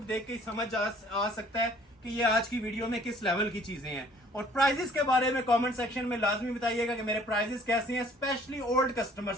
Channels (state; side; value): normal; both; correlation 0.56